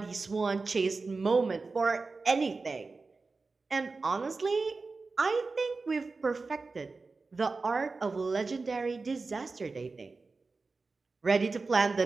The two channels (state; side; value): quieter; left; 4.0 dB